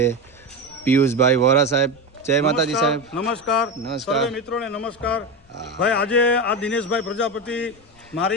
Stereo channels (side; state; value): left; noise; rumble, 29 dB below the sound